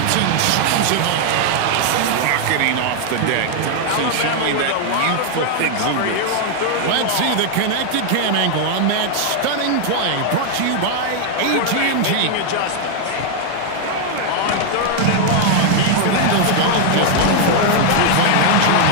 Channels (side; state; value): both; different; correlation 0.00